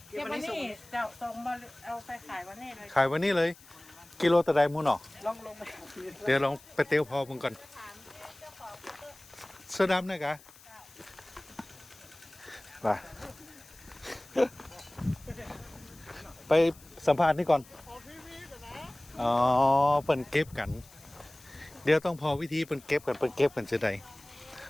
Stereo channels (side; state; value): left; noise; hiss, 23 dB below the sound